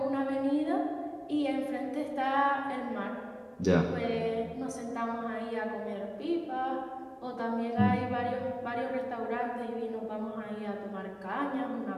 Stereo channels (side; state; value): both; identical; correlation 1.00